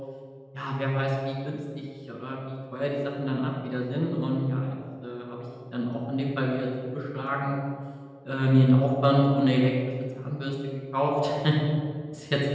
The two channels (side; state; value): both; identical; correlation 1.00